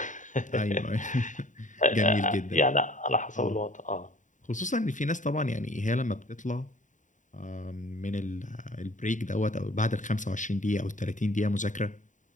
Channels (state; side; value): late; right; 0.36 ms